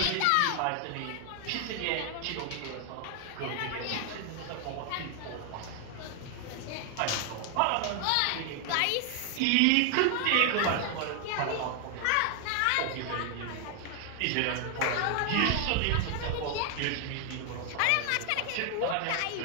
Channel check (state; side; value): different; both; correlation 0.00